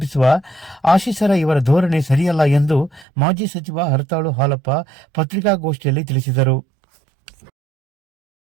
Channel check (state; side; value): drops out; left; at 3.1 s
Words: ಆಶೀಸರ ಇವರ ಧೋರಣೆ ಸರಿಯಲ್ಲ ಎಂದು ಮಾಜಿ ಸಚಿವ ಹರತಾಳು ಹಾಲಪ್ಪ ಪತ್ರಿಕಾಗೋಷ್ಠಿಯಲ್ಲಿ ತಿಳಿಸಿದರು.